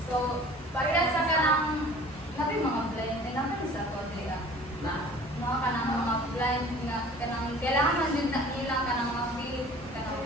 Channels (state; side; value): normal; both; correlation 0.47